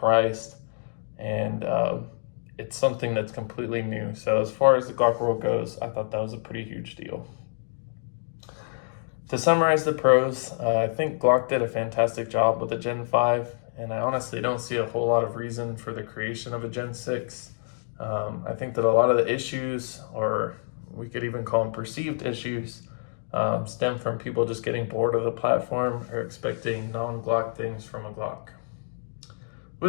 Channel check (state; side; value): silent; right; digital silence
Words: and it's something that's completely new. So as far as the Glock world goes, I thought that was a pretty huge deal. To summarize the pros, I think Glock did a fantastic job with the Gen 5, and I honestly don't see a whole lot of reason for the creation of a Gen 6. I think that a lot of the issues, or we could even call them perceived issues, stem from people just getting bored of the platform or expecting non-Glock things from a Glock.